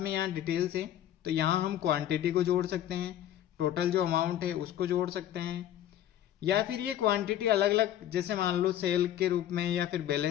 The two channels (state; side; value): quieter; right; 11.8 dB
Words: यहाँ डिटेल्स है, तो यहाँ हम क्वांटिटी को जोड़ सकते हैं, टोटल जो अमाउंट है उसको जोड़ सकते हैं, या फिर ये क्वांटिटी अलग अलग जैसे मान लो सेल के रूप में या फिर